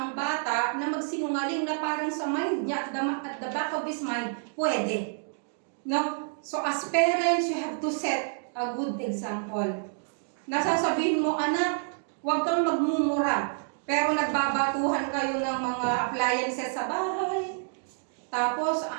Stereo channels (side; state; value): left; silent; digital silence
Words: bata na magsinungaling na parang sa mind niya, at the back of his mind, pwede. No? So as parents, you have to set a good example. Nasasabihin mo, anak, huwag kang magmumura. Pero nagbabatuhan kayo ng mga appliances sa bahay. Tapos,